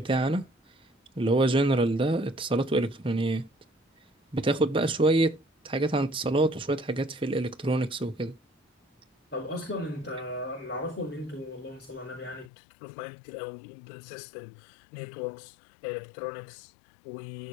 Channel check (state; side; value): drops out; right; at 12.5 s